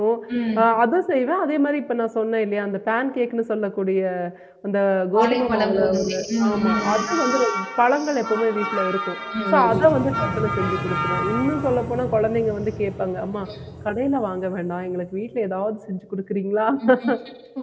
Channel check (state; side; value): identical; both; correlation 1.00